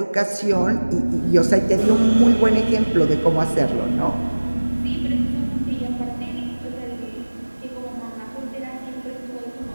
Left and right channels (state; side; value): inverted; both; correlation -1.00